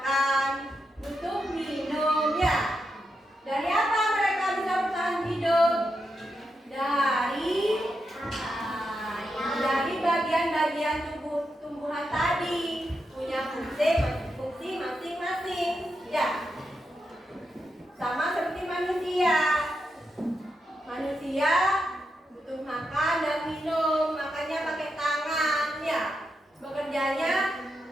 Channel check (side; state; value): both; normal; correlation 0.85